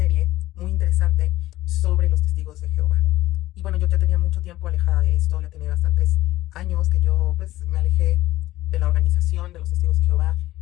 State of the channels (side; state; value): right; quieter; 15.9 dB